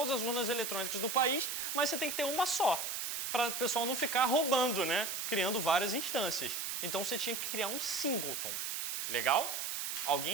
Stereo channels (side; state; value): right; noise; hiss, 3 dB below the sound